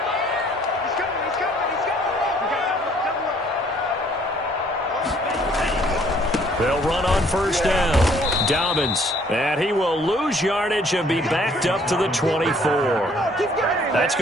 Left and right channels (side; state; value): both; normal; correlation 0.61